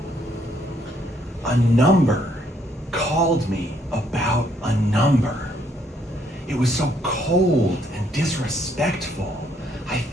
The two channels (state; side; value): normal; both; correlation 0.69